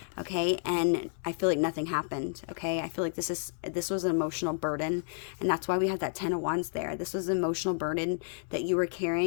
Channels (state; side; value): silent; right; 57 dB below the other